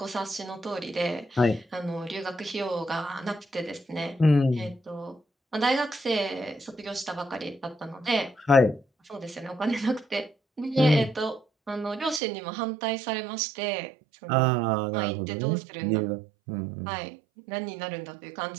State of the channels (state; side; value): drops out; left; at 12.2 s